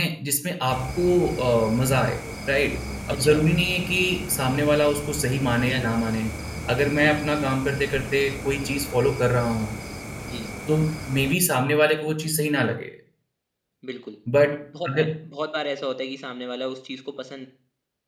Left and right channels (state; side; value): identical; both; correlation 1.00